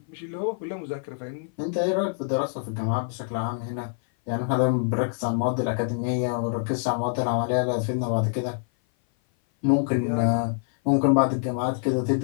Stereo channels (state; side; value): silent; right; 57 dB below the other